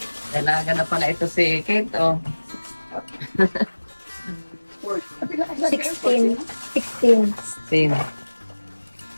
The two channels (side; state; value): both; inverted; correlation -1.00